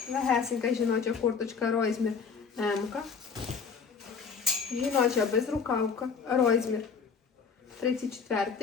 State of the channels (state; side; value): quieter; right; 5.8 dB